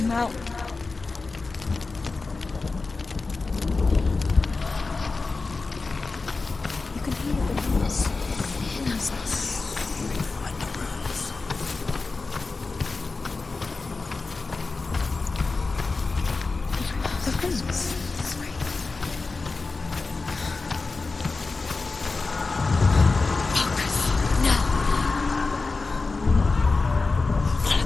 now. You can hear the noise. The rooms. No. Follow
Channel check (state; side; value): quieter; right; 3.9 dB